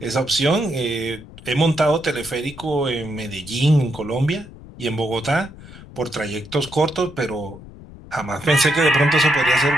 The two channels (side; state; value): left; noise; rumble, 17 dB below the sound